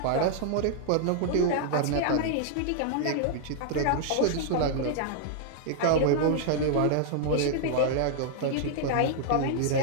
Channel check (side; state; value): both; different; correlation -0.01